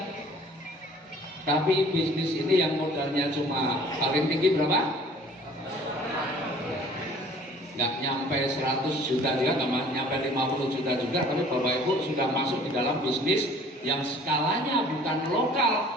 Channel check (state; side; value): normal; both; correlation 0.52